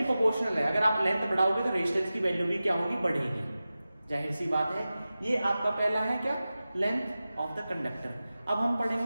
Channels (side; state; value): both; inverted; correlation -0.95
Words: प्रोपोर्शनल है, अगर आप लेंथ बढ़ाओगे तो रेजिस्टेंस की वैल्यू भी क्या होगी, बढ़ेगी। जाहिर सी बात है। ये आपका पहला है क्या, लेंथ ऑफ द कंडक्टर। अब हम